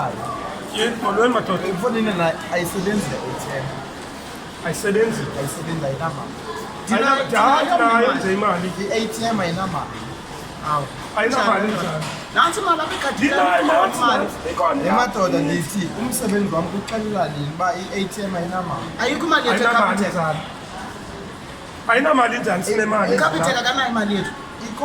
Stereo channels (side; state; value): both; identical; correlation 1.00